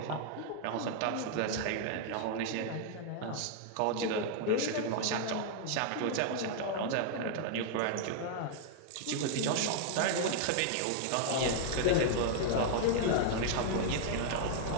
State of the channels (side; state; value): both; different; correlation -0.01